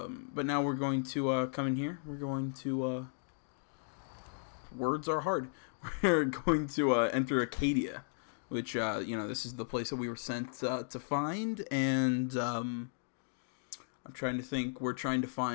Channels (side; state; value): right; silent; digital silence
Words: now we're going to come in here. We're going to words are hard. We're going to enter Acadia, which, you know, this is the place that we were sent to find, and I'm trying to think. We're trying to